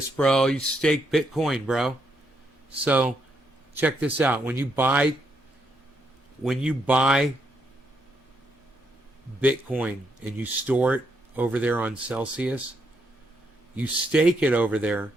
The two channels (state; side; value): normal; both; correlation 0.77